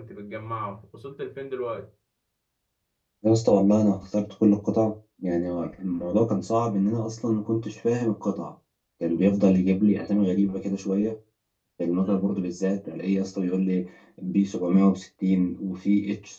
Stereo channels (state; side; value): identical; both; correlation 1.00